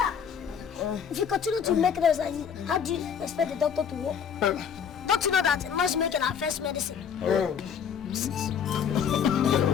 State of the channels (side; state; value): right; quieter; 7.6 dB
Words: If you continue to make noise like this, how do you expect the doctor to work? Don't you know that noise making our first medicine?